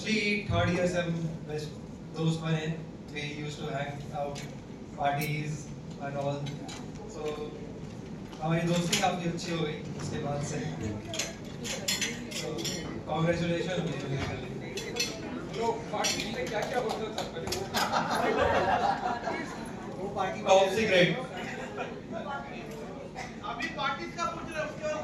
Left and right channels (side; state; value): both; identical; correlation 1.00